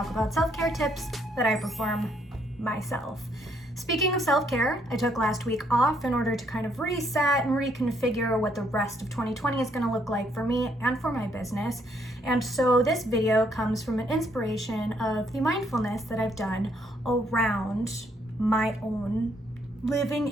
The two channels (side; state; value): both; normal; correlation 0.71